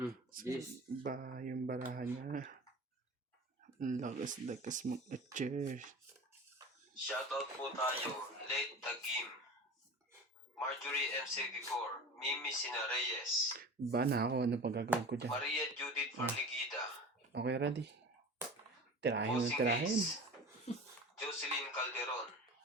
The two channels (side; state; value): both; normal; correlation 0.35